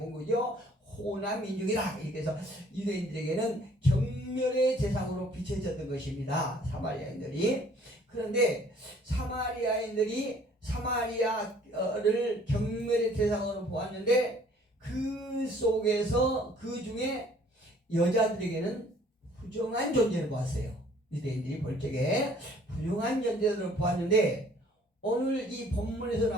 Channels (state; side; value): normal; both; correlation 0.57